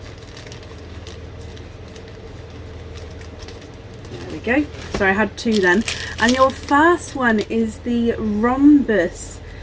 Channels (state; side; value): identical; both; correlation 1.00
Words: Go. So I had 2 then, and your first one is the rhombus